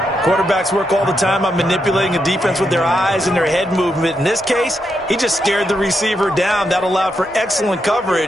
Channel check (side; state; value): both; normal; correlation 0.82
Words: Quarterbacks work all the time on manipulating a defense with their eyes and their head movement. In this case, he just stared the receiver down. That allowed for excellent